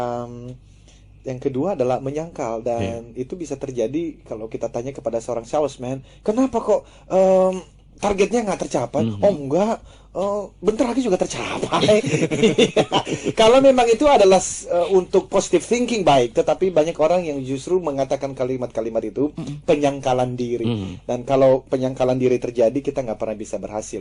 Yang kedua adalah menyangkal, dan itu bisa terjadi kalau kita tanya kepada seorang salesman, kenapa kok targetnya nggak tercapai? Oh enggak, bentar lagi juga tercapai. Kalau memang itu adalah untuk positive thinking baik, tetapi banyak orang yang justru mengatakan kalimat-kalimat itu penyangkalan diri. Dan kalau penyangkalan diri terjadi, kita nggak pernah bisa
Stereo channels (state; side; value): identical; both; correlation 1.00